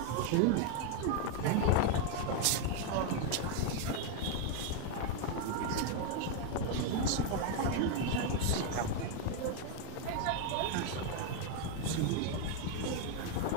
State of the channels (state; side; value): different; both; correlation 0.01